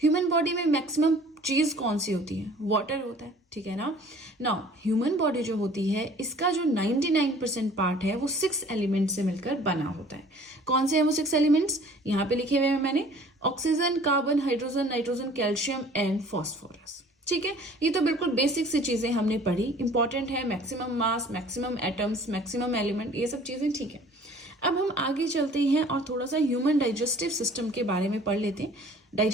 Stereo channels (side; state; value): both; normal; correlation 0.51